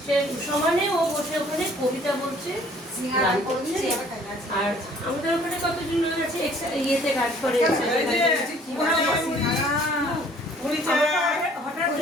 সে সমানে ও বসে ওখানে কবিতা বলছে গান করছে আর আমাদের ওখানে কতজন লোক আছে ইয়েতে কাজ করে হঠাৎ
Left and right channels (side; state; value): both; normal; correlation 0.56